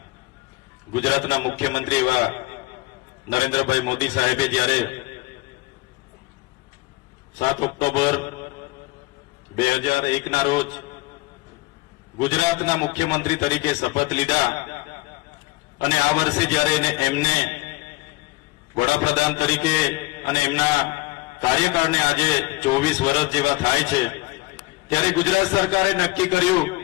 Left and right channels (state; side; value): quieter; right; 21.4 dB